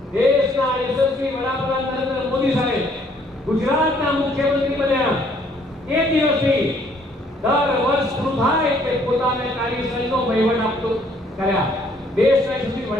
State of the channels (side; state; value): both; normal; correlation 0.63